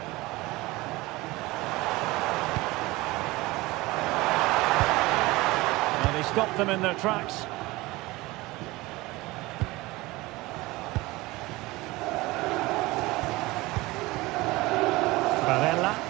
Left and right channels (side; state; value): left; quieter; 20.8 dB